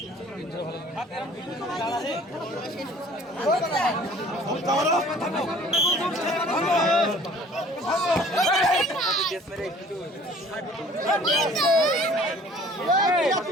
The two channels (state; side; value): normal; both; correlation 0.51